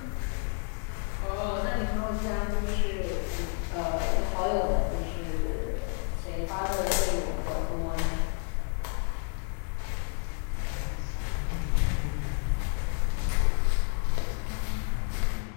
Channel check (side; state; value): right; quieter; 38.4 dB